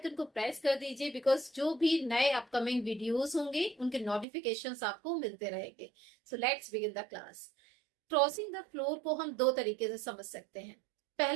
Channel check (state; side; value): drops out; left; at 4.2 s